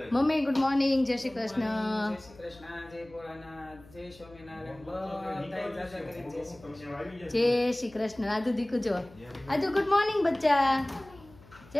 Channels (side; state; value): left; noise; hum, 23 dB below the sound